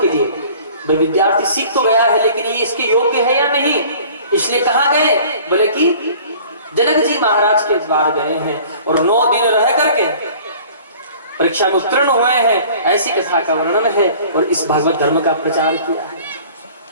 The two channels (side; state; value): both; inverted; correlation -0.48